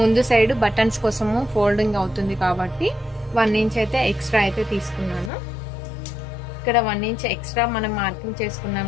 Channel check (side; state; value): right; drops out; at 5.3 s